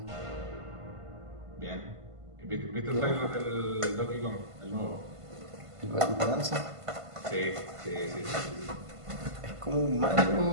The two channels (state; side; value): late; left; 1.5 ms